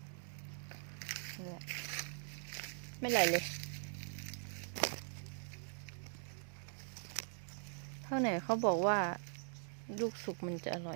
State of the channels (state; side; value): silent; left; digital silence